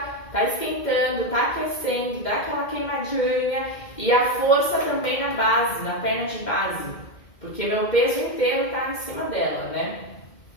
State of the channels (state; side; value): late; right; 2.1 ms